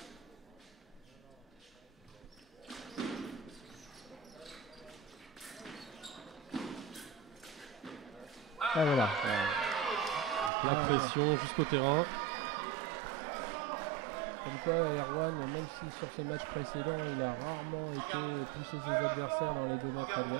Ah voilà. Pression jusqu'au terrain. Comme quoi Erwan, même si sur ses matchs précédents il a rarement été pousser ses adversaires dans les 2 mètres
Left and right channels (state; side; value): drops out; left; at 10.5 s